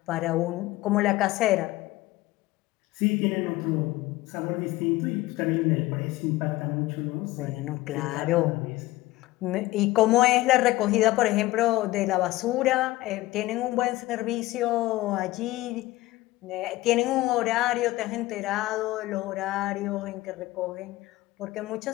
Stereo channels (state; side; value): quieter; right; 18.1 dB